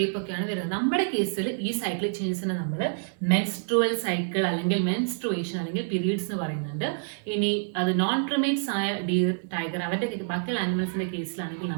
ഒക്കെയാണ് വരുന്നത്. നമ്മുടെ കേസിൽ ഈ സൈക്ലിക് ചേഞ്ചസിനെ നമ്മൾ മെൻസ്ട്രുവൽ സൈക്കിൾ അല്ലെങ്കിൽ മെൻസ്ട്രുവേഷൻ അല്ലെങ്കിൽ പീരീഡ്സ് എന്ന് പറയുന്നുണ്ട്. ഇനി അത് നോൺ പ്രിമേറ്റ്സ് ആയ ഡീർ, ടൈഗർ അവരുടെ ബാക്കിയുള്ള ആനിമൽസിന്റെ കേസിലാണെങ്കിൽ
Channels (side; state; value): left; silent; digital silence